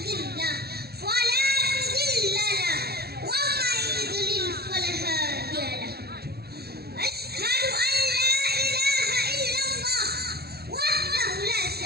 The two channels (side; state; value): left; late; 0.46 ms